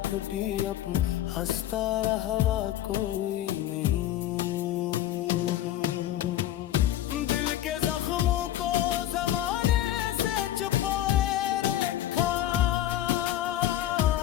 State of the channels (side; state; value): right; quieter; 12.8 dB